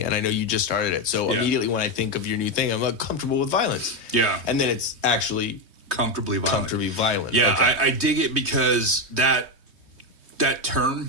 and I know you just started it. So immediately when I think of your new thing, I'm like, comfortable with violence. Yeah. And then it's actually comfortably violent. Yeah, okay. I dig it because that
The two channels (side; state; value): left; late; 3.2 ms